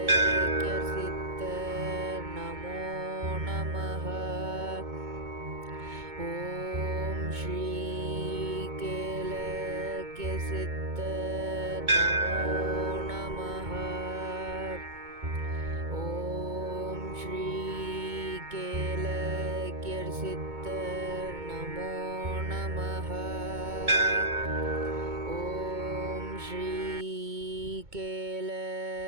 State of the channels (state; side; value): late; left; 2.2 ms